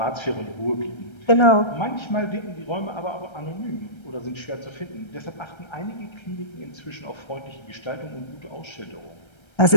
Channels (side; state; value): right; late; 1.3 ms